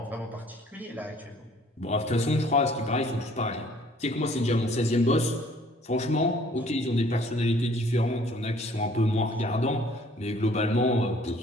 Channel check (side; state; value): both; normal; correlation 0.57